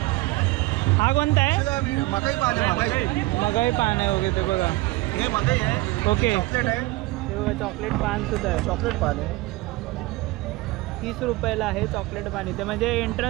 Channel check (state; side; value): quieter; left; 20.5 dB